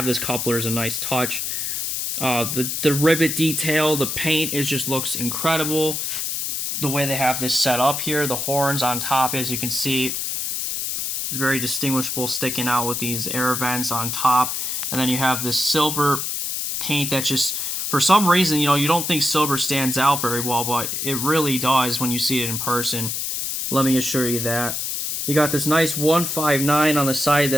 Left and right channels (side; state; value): left; noise; hiss, 2 dB below the sound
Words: this coupler is a nice touch. The rivet detail, the paint just looks incredible. The way they have this set up here, the horns on top, as you can see, very distinguishable, sticking out with these air vents on top. And then you have this silver paint that just, for some reason, you don't think silver stands out very well, but it really does when you see it in person. Let me assure you that. You got this nice 159 on the side